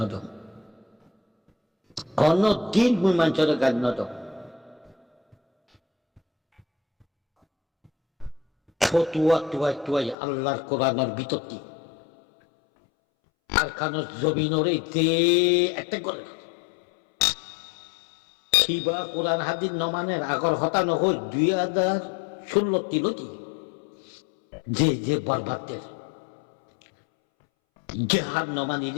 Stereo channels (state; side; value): drops out; right; at 10.2 s